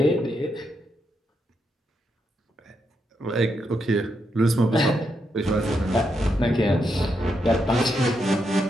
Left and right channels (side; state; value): both; normal; correlation 0.81